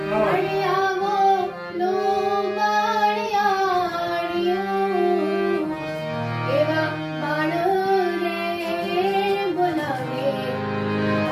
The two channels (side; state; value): both; identical; correlation 1.00